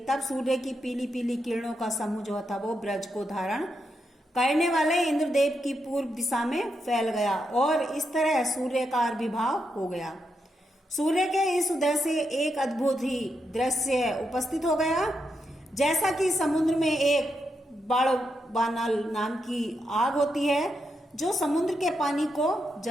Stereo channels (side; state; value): both; normal; correlation 0.83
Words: तब सूर्य की पीली पीली किरणों का समूह जो था वो ब्रज को धारण करने वाले इंद्रदेव की पूर्व दिशा में फैल गया और इस तरह सूर्य का आविर्भाव हो गया। सूर्य के इस उदय से एक अद्भुत ही दृश्य उपस्थित हो गया। जैसा कि समुद्र में एक बड़वानल नाम की आग होती है जो समुद्र के पानी को